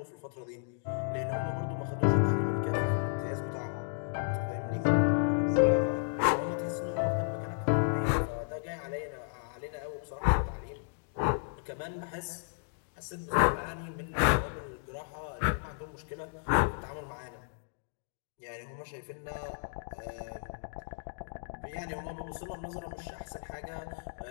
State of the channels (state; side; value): silent; right; digital silence